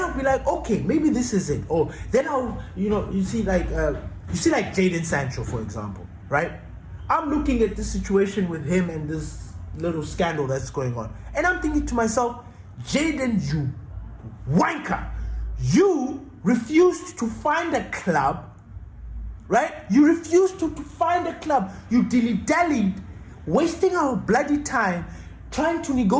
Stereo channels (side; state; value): both; identical; correlation 1.00